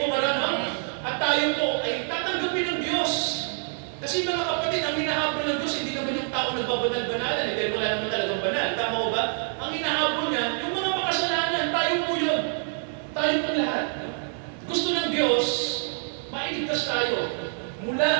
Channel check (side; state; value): left; silent; 61 dB below the other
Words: ba? No? At tayo po ay tatanggapin ng Diyos. Kasi mga kapatid, ang hinahabol ng Diyos, hindi naman yung tao nagbabanal-banalan. Dahil wala naman talagang banal. Tama ko ba? Ang hinahabol niya, yung mga makasalanan, tayo po yun. Tayo po lahat. Gusto ng Diyos, mailigtas tayo